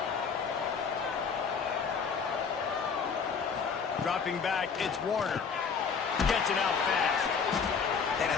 Dropping back, it's Warner. Gets it out fast. And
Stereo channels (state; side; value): quieter; right; 5.9 dB